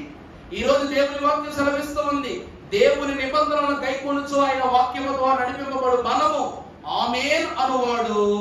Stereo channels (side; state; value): both; identical; correlation 1.00